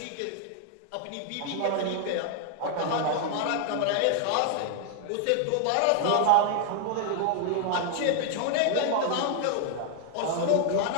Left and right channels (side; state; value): both; different; correlation 0.00